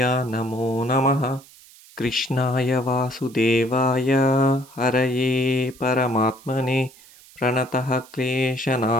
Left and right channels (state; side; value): noise; right; hiss, 23 dB below the sound